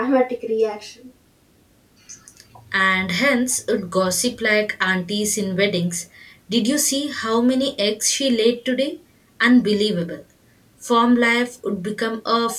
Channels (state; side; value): identical; both; correlation 1.00